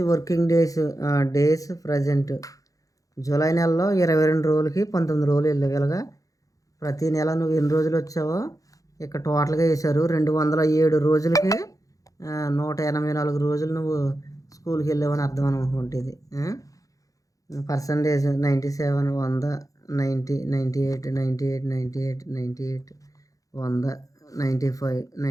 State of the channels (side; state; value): right; late; 0.17 ms